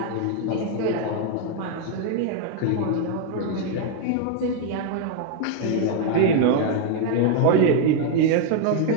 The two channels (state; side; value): different; both; correlation 0.00